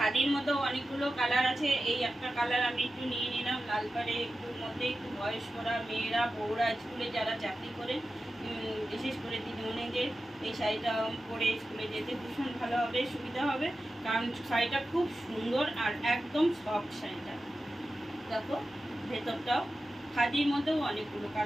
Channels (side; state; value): both; normal; correlation 0.93